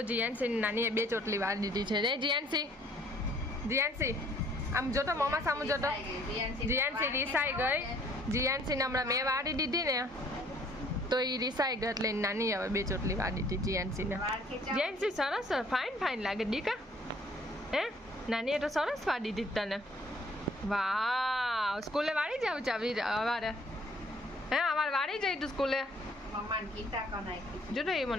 જીએનસી નાનીએ 2 ચોટલી વાળી દીધી છે ને. જીએનસી આમ જોતો મમ્મા સામું જોતો. જીએનસી રીસાઈ ગઈ. જીએનસીને હમણાં મેં વાળી દીધી ને તો એ રીસાઈ ગઈ એટલે નાની હવે 2 ચોટલી વાળી દીધી જીએનસીને. જીએનસી સરસ ફાઇન લાગે દીકા. હે નાનીએ તો સરસ વાળી દીધી તને. વાહ, સ્કૂલે વાળી જાવ ચાવી અવારે? હે અમારે વાળી જઈ તું સ્કૂલે? જો તો એ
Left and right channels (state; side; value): normal; both; correlation 0.60